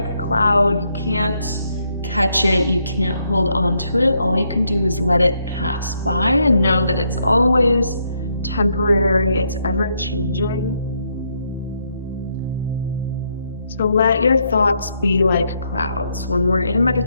a cloud, you can't catch it, you can't hold on to it. All you can do is let it pass by and know that it's always temporary, it's ever changing. So let your thoughts be like clouds. When we're in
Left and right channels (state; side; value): inverted; both; correlation -0.76